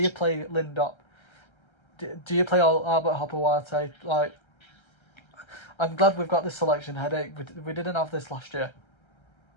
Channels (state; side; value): late; right; 1.3 ms